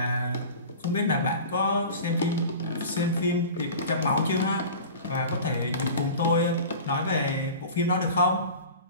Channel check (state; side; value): inverted; both; correlation -0.37